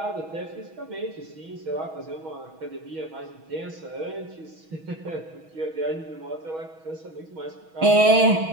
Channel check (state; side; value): late; left; 6.3 ms